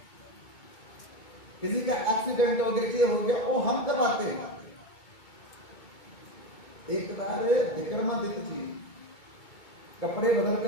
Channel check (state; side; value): late; right; 2.2 ms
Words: किसी का एक्सीडेंट हो गया, ये हो गया, वो हम करवाते हैं। एक बार विक्रमादित्य जी कपड़े बदल